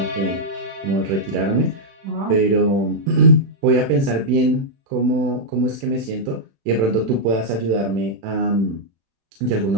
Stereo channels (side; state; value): left; late; 36 ms